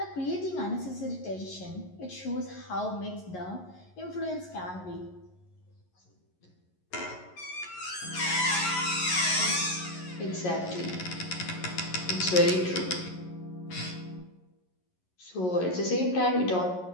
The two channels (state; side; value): late; right; 11 ms